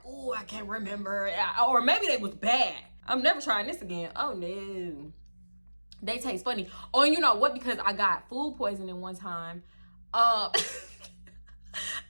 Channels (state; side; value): inverted; both; correlation -1.00